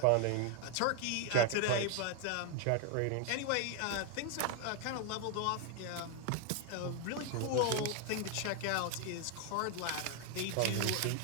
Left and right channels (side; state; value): both; different; correlation 0.01